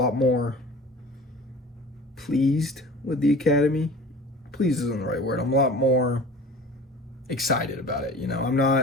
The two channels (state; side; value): normal; both; correlation 0.41